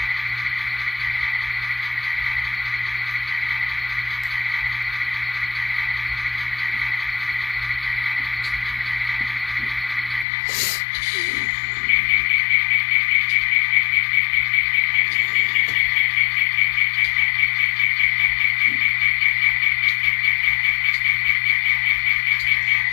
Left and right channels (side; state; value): right; drops out; at 10.2 s